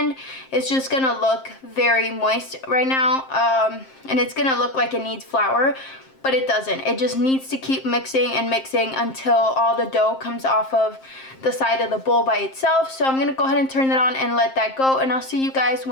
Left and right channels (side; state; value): right; late; 7.6 ms